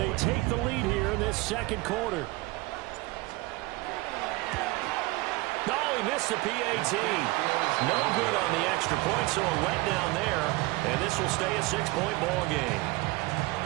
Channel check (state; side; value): quieter; left; 22.2 dB